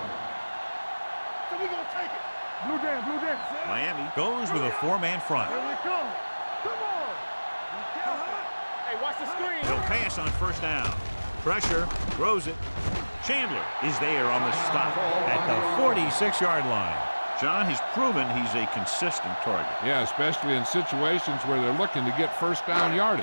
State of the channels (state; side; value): inverted; both; correlation -1.00